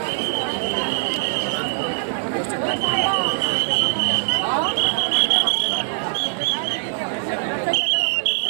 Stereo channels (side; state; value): left; silent; 61 dB below the other